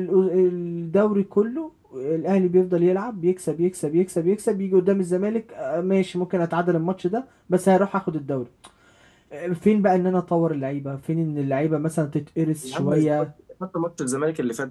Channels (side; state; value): both; identical; correlation 1.00